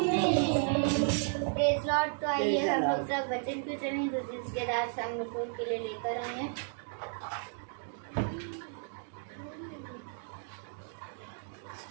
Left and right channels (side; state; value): left; silent; 56 dB below the other